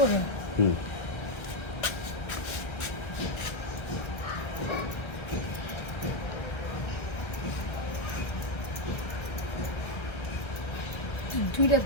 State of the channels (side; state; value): right; late; 1.3 ms